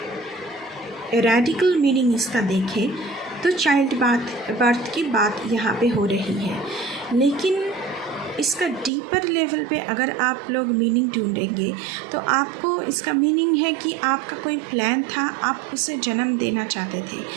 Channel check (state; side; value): drops out; left; at 8.9 s